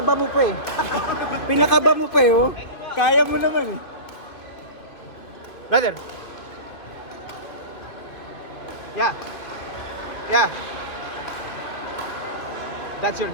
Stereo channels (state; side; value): late; right; 2.7 ms